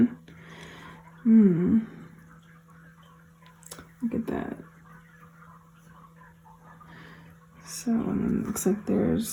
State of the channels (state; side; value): identical; both; correlation 1.00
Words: Look at that. So, and then it looks like